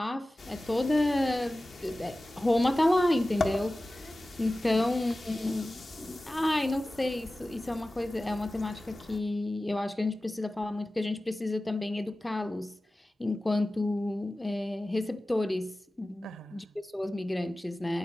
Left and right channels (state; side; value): normal; both; correlation 0.96